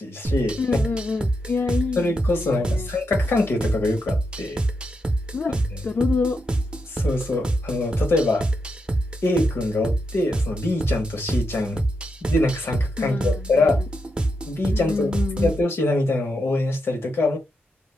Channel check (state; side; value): normal; both; correlation 0.84